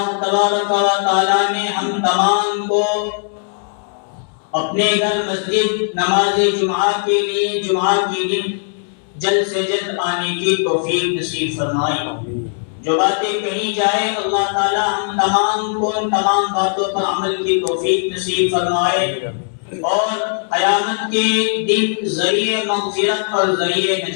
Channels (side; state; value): right; silent; 67 dB below the other